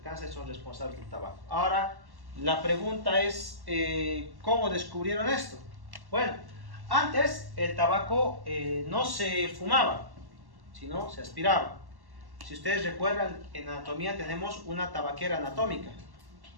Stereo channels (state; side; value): late; left; 1.1 ms